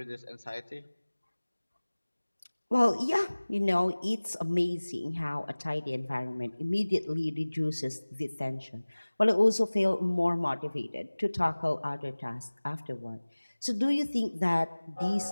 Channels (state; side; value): inverted; both; correlation -1.00